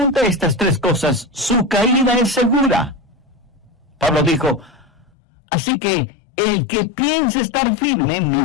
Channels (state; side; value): drops out; right; at 5.1 s